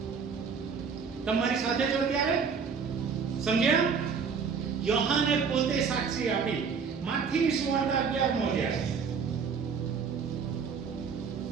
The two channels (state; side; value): quieter; left; 6.0 dB